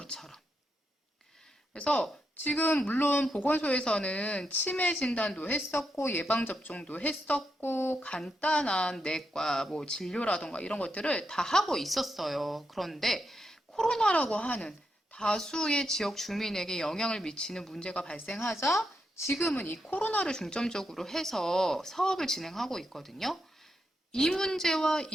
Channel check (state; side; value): normal; both; correlation 0.83